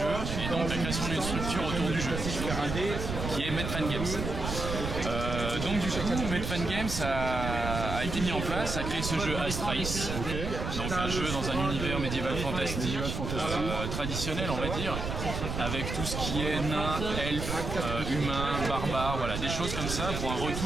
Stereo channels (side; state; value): right; noise; rumble, 4 dB below the sound